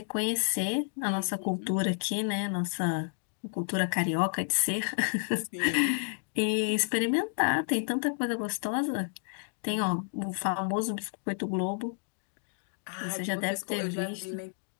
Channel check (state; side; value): silent; right; digital silence